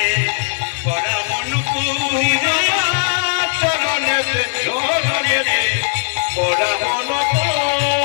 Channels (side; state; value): right; silent; 57 dB below the other